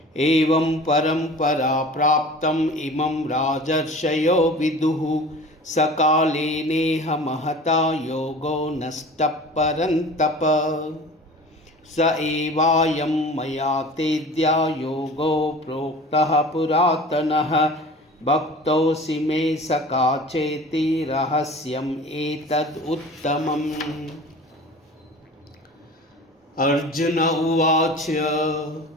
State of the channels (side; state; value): both; normal; correlation 0.40